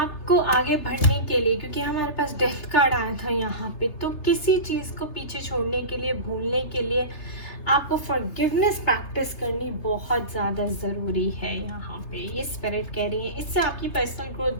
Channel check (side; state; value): right; late; 3.3 ms